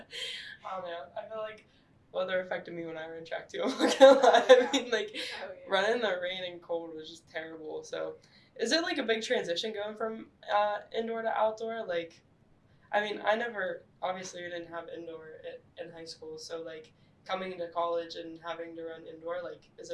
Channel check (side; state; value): both; identical; correlation 1.00